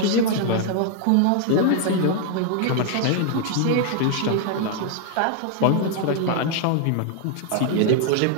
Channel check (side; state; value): both; different; correlation 0.00